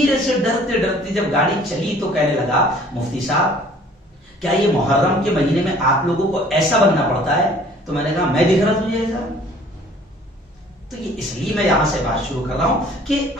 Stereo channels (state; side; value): normal; both; correlation 0.54